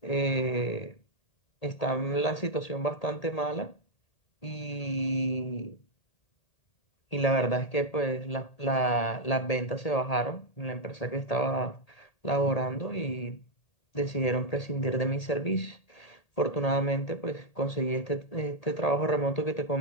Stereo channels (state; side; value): late; right; 1.8 ms